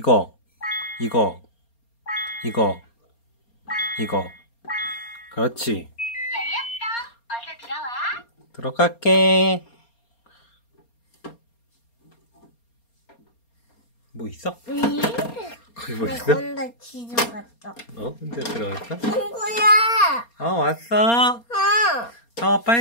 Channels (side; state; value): right; late; 4.3 ms